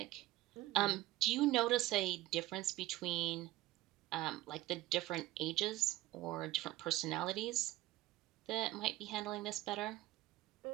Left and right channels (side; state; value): left; quieter; 16.5 dB